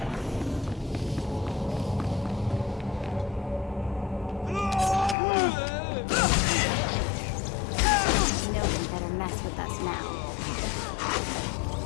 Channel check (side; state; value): right; drops out; at 5.2 s